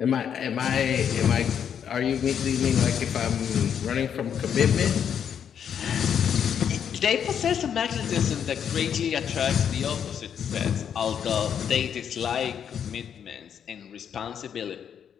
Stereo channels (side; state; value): right; quieter; 8.3 dB